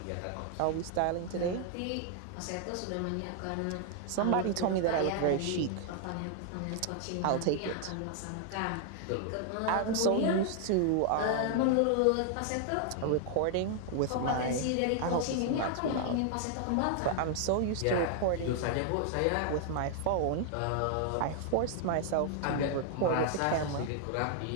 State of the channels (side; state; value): both; different; correlation 0.00